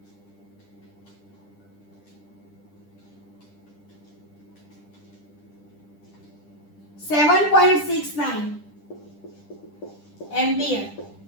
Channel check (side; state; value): right; late; 10 ms